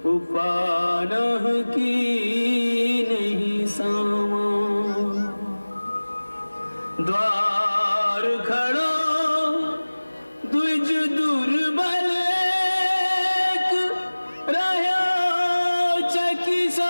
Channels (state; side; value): inverted; both; correlation -1.00